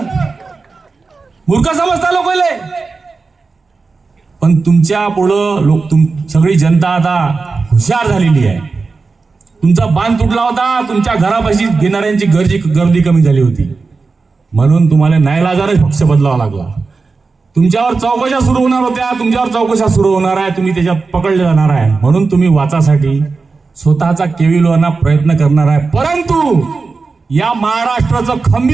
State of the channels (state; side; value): quieter; left; 4.3 dB